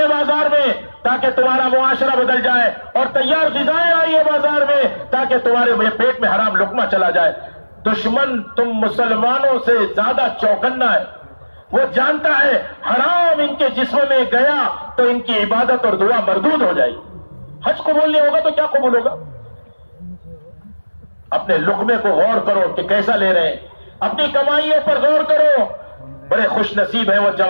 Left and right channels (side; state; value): both; inverted; correlation -1.00